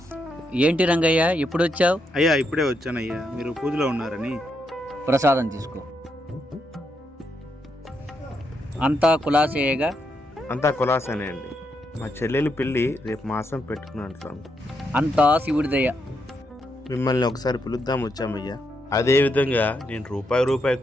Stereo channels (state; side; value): normal; both; correlation 0.80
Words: ఏంటి రంగయ్య ఎప్పుడు వచ్చావు? అయ్యా ఇప్పుడే వచ్చానయ్యా, మీరు పూజలో ఉన్నారని. ప్రసాదం తీసుకో. అంతా కులాసేయగా? అంతా కులాసనే అండి. మా చెల్లెలు పెళ్ళి రేపు మాసం పెట్టుకున్నాను స్వామి. అంతా శివుడి దయ. మిమ్మల్ని ఒకసారి పిలుద్దాం వచ్చామయ్యా. అదేవిధంగా నేను రూపాయి